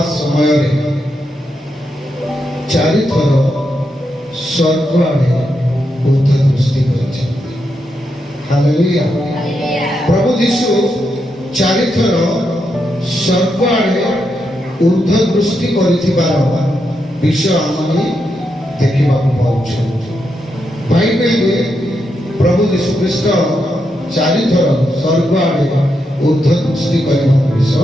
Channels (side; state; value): both; normal; correlation 0.83